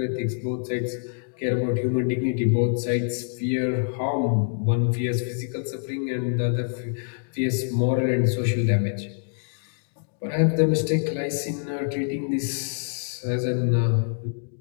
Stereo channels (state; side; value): silent; right; digital silence